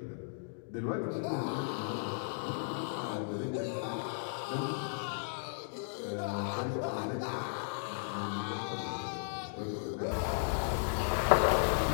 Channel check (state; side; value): silent; right; digital silence